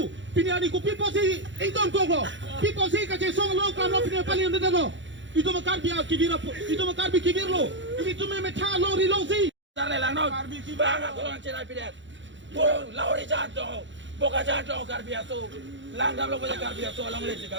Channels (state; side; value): late; left; 0.54 ms